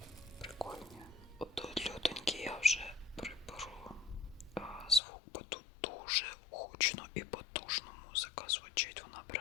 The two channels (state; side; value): drops out; right; at 5.0 s